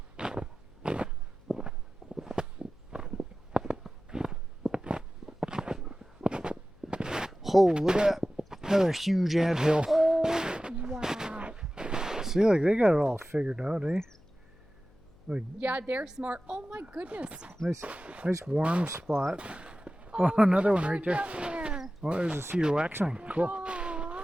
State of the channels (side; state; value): left; noise; hum, 28 dB below the sound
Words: Oh, look at that. Another huge anthill. Oh, wow. See, like they got it all figured out, eh? Like Yeah, they're smart. Oh my goodness. nice warm spot. Oh, another one right there. Down there. Oh, there's a cedar waxwing. Cool.